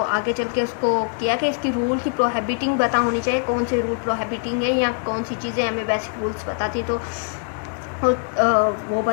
आगे चल के उसको किया कि इसकी रूल की प्रोहिबिटिंग पता होनी चाहिए, कौन से रूल प्रोहिबिटिंग है या कौन सी चीज़ें हमें बेसिक रूल्स बताती हैं। तो वो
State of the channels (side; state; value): right; quieter; 39.7 dB